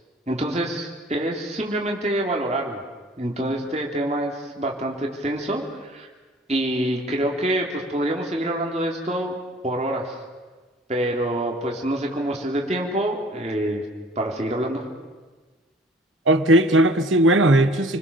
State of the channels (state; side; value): normal; both; correlation 0.50